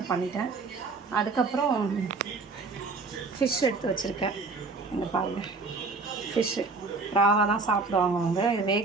பண்ணிட்டேன். அதுக்கப்புறம் ஃபிஷ் எடுத்து வச்சுருக்கேன். இங்கே பாருங்கள், ஃபிஷ்ஷு ராவாக தான் சாப்பிடுவாங்க அவங்க. இது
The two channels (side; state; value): left; quieter; 4.0 dB